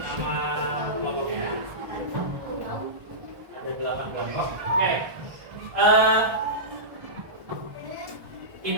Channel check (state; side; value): late; left; 1.3 ms